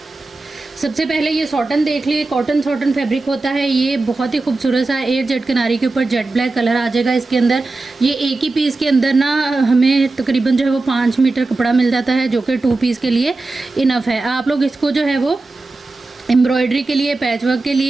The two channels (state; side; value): quieter; left; 3.3 dB